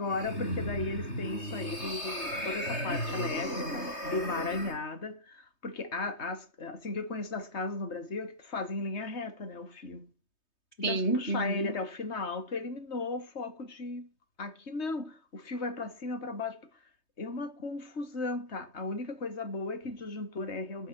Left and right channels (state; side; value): late; right; 3.2 ms